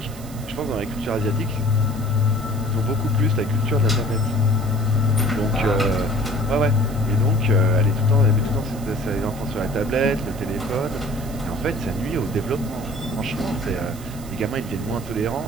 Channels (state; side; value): noise; right; hiss, 18 dB below the sound